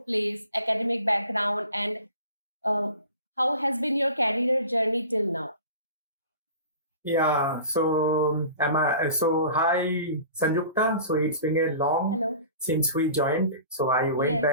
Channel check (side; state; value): both; inverted; correlation -0.41